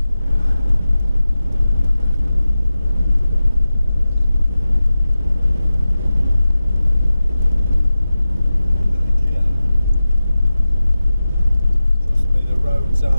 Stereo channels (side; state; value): both; inverted; correlation -0.93